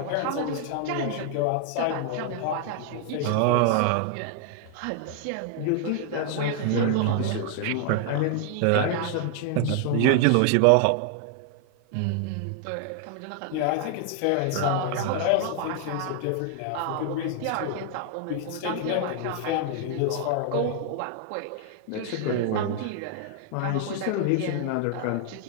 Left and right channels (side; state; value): both; different; correlation 0.00